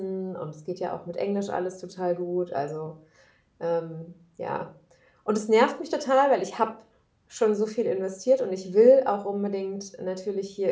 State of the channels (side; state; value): both; identical; correlation 1.00